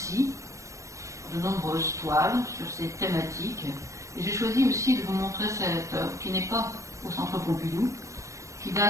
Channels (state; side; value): late; left; 0.15 ms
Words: de nombreuses toiles sur ces thématiques. Et j'ai choisi aussi de vous montrer cette œuvre qui n'est pas au Centre Pompidou, qui